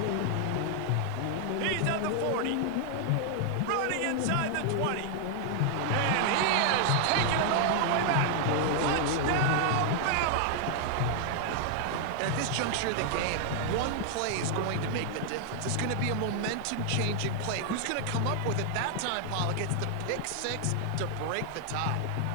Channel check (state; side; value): different; both; correlation 0.00